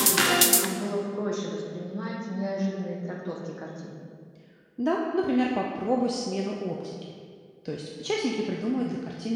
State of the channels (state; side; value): identical; both; correlation 1.00